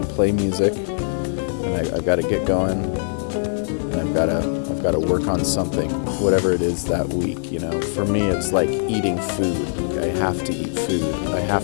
to play music, and I've got to get going, and I've got to work on something, whatever it is that week. For me, it's like eating food. I have to eat food. I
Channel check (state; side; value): silent; right; 64 dB below the other